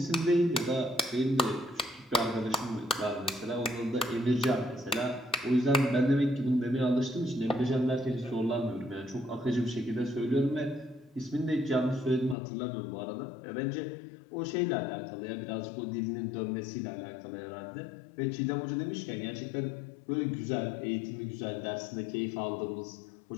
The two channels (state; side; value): drops out; right; at 12.4 s